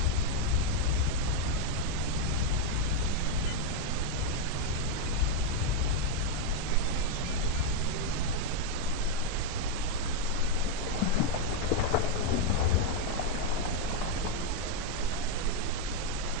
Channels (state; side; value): different; both; correlation 0.01